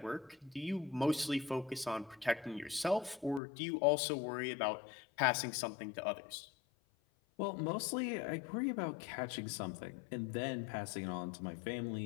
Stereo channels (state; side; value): drops out; right; at 3.4 s